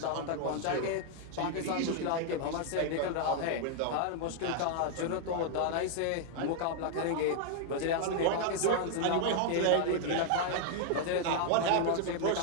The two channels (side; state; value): both; different; correlation 0.00